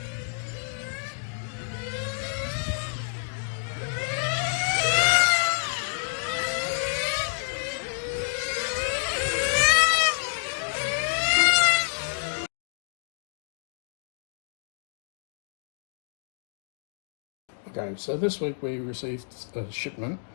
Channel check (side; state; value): right; silent; digital silence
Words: Okay, so this week we received a shipment.